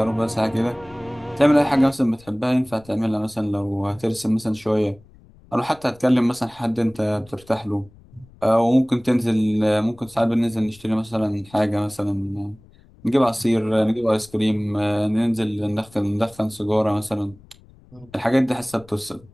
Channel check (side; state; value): left; noise; rumble, 25 dB below the sound